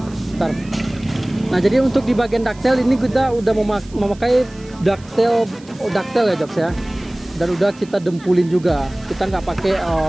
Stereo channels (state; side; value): noise; right; hiss, 25 dB below the sound